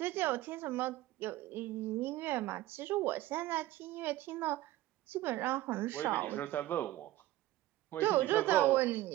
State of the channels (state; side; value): quieter; left; 15.9 dB